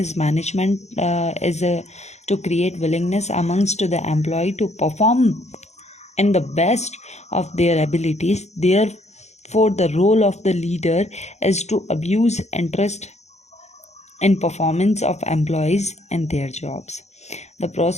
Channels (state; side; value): late; right; 0.33 ms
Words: is management is to create willingness amongst the employee to perform in the best of their abilities. Therefore, the role of the leader is to abuse interest in performance of employees and their jobs. The